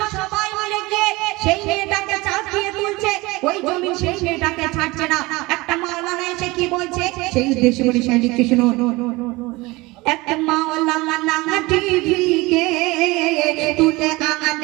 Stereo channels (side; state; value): left; quieter; 22.2 dB